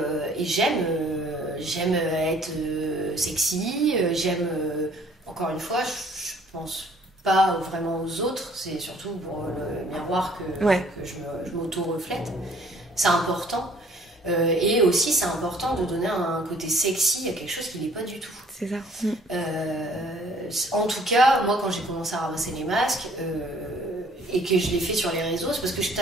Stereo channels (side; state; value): both; normal; correlation 0.58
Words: j'aime être sexy, j'aime, encore une fois, je pense pas vraiment aux autres, c'est surtout pour le miroir que je m'auto-reflète. C'est important. Et aussi, c'est important de donner un côté sexy à quelque chose qui n'est pas du tout. C'est ça. En tout cas, moi, quand j'ai commencé à ramasser les masques, et que je l'ai fait sur les réseaux, c'est parce que je